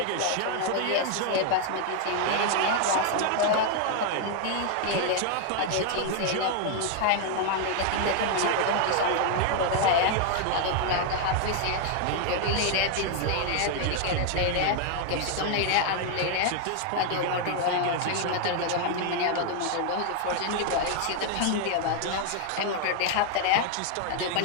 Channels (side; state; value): both; different; correlation 0.00